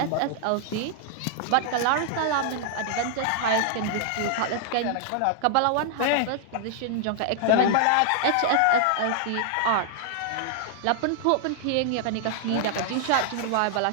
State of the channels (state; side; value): different; both; correlation -0.01